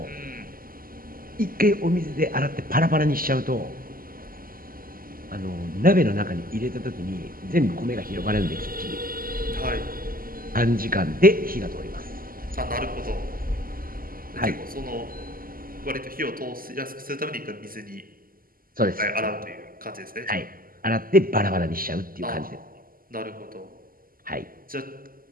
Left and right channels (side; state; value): left; late; 0.42 ms